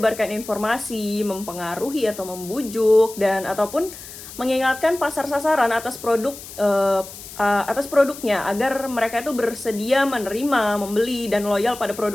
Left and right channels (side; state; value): left; noise; hiss, 14 dB below the sound